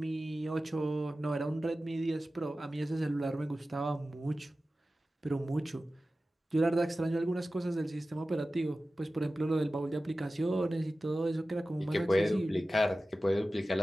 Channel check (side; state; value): both; normal; correlation 0.95